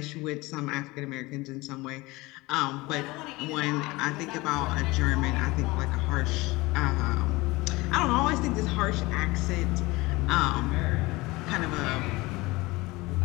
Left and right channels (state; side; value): quieter; right; 21.8 dB